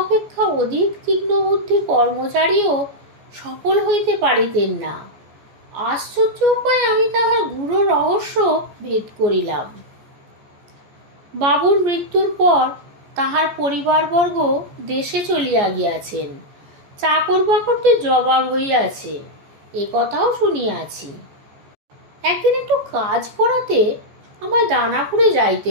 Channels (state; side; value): late; left; 14 ms